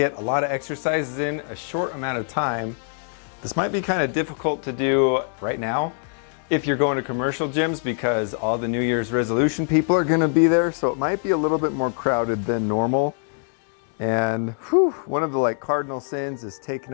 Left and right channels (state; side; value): silent; right; 63 dB below the other